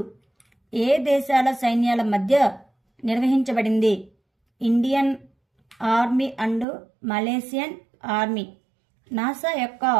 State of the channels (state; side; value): drops out; left; at 6.7 s